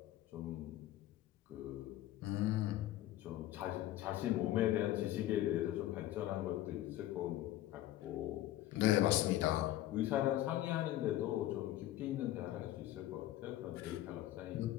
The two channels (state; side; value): quieter; right; 14.4 dB